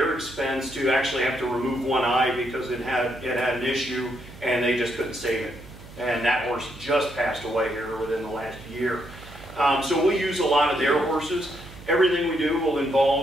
expense to actually have to remove one eye because it had an issue, and they just couldn't save it. And that horse just passed away here within the last year. So we'll use a lot of their horses. Everything we do will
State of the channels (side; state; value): right; noise; hum, 18 dB below the sound